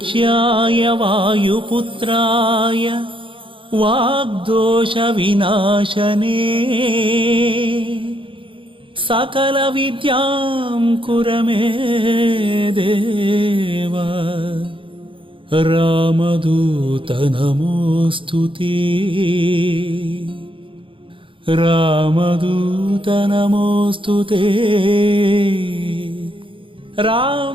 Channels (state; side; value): late; left; 0.25 ms